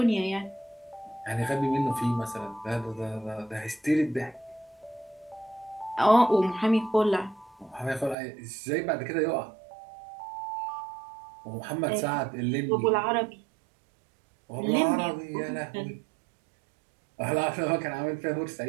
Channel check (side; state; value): left; drops out; at 8.2 s